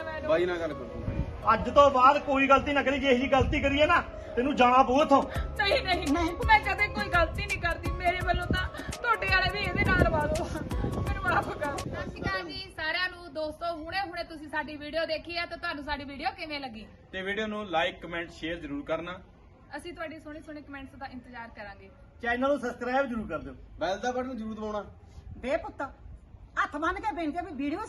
ਮੈਨੂੰ। ਬਾਈ ਨਾਲ ਗੱਲ ਕਰ ਦੂੰਗੀ। ਅੱਜ ਤੋਂ ਬਾਅਦ ਕੋਈ ਗਲਤੀ ਨਾ ਕਰੀ। ਜੇ ਇਹੀ ਗਲਤੀ ਕਰੀਏ ਨਾ, ਤੈਨੂੰ ਜਾਣਾ ਪਊ ਇੱਥੋਂ। ਨਹੀਂ ਨਹੀਂ ਮੈਂ ਕਦੇ ਕੋਈ ਗਲਤੀ ਨਹੀਂ ਕਰਦੀ। ਮੇਰੇ ਵੱਲੋਂ ਤਾਂ ਤੁਹਾਡੇ ਵਾਲੇ ਵੀ ਇਹਦੇ ਨਾਲ ਲਵਾ ਦਿਓ। ਮੈਨੂੰ ਮਾਫ ਕਰੋ। ਸਤਿ ਸ਼੍ਰੀ ਅਕਾਲ ਜੀ ਸਾਰਿਆਂ ਨੂੰ। ਦੋਸਤੋ ਹੁਣੇ ਤੁਸੀਂ ਸਾਡੀ ਵੀਡੀਓ ਦੇਖੀ ਹੈ ਤਾਂ ਤੁਹਾਨੂੰ ਸਾਡੀ ਵੀਡੀਓ ਕਿਵੇਂ ਲੱਗੀ? ਤੇ ਵੀਡੀਓ ਨੂੰ ਲਾਈਕ ਕਮੈਂਟ ਸ਼ੇਅਰ ਜ਼ਰੂਰ ਕਰਨਾ। ਅਸੀਂ ਤੁਹਾਡੀ ਸੋਹਣੇ ਕਮੈਂਟਸ ਦਾ ਇੰਤਜ਼ਾਰ ਕਰਾਂਗੇ। ਚੈਨਲ ਨੂੰ ਸਬਸਕ੍ਰਾਈਬ ਜ਼ਰੂਰ ਕਰ ਦਿਓ। ਬੈਲ ਦਾ ਬਟਨ ਜ਼ਰੂਰ ਦਬਾਉਣਾ। ਬੇ ਪੁੱਤ ਹੱਥ ਬੰਨ ਕੇ ਬੇਨਤੀ ਹੈ ਵੀ ਵੀਡੀਓ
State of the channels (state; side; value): identical; both; correlation 1.00